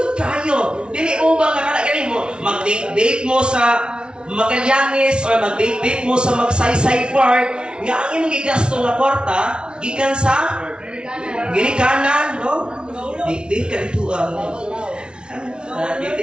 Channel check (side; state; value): left; late; 0.056 ms